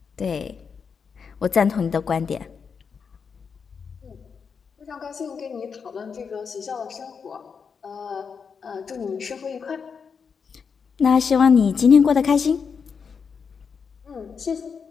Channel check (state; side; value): quieter; right; 6.0 dB